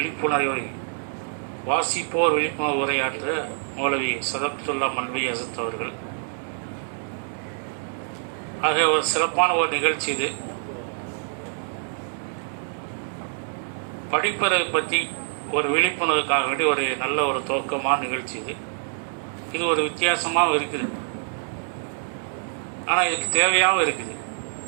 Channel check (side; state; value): left; silent; digital silence